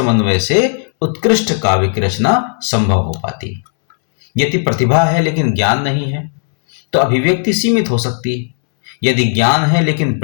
से उत्कृष्ट काव्य की रचना संभव हो पाती है। यदि प्रतिभा है लेकिन ज्ञान नहीं है तो अभिव्यक्ति सीमित हो सकती है। यदि ज्ञान है लेकिन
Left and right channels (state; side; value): silent; right; digital silence